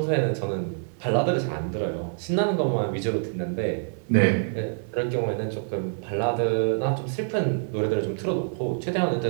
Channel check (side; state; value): left; silent; digital silence